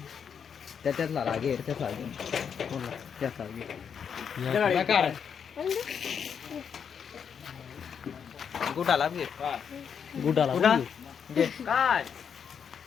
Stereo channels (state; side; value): quieter; right; 7.2 dB